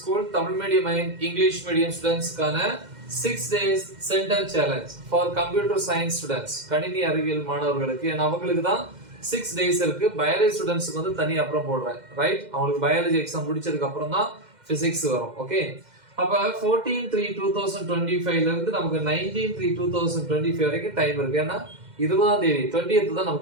Tamil medium and English medium ஸ்டூடண்ட்ஸ்க்கான 6 days centum challenge for computer science students, கணினி அறிவியல் மாணவர்களுக்கு. ஏன்னா அவங்களுக்கு தான் 6 days இருக்கு. பயாலஜி ஸ்டூடண்ட்ஸ்க்கு வந்து தனி அப்புறம் போடுறேன், ரைட்? அவங்களுக்கு பயாலஜி எக்ஸாம் முடிச்சதுக்கு அப்புறம் தான் பிசிக்ஸ் வரும், ஓகே? அப்ப 14/3/2025 ல இருந்து நமக்கு 19/3/2025 வரைக்கும் டைம் இருக்கு. ஏன்னா 20ஆம் தேதி 20th தான்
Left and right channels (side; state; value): left; late; 2.1 ms